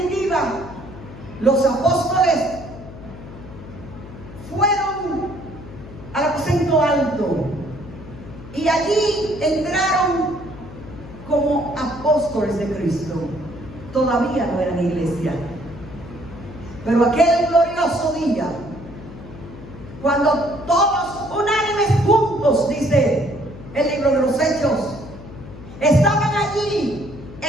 los apóstoles, fueron al aposento alto y allí entraron como apóstoles de Cristo. Todavía no eran iglesia, pero aquel glorioso día, cuando todos unánimes juntos, dice el libro de los Hechos, estaban allí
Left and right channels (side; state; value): left; noise; hum, 15 dB below the sound